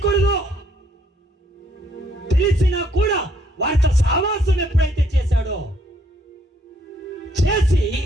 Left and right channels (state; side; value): normal; both; correlation 0.67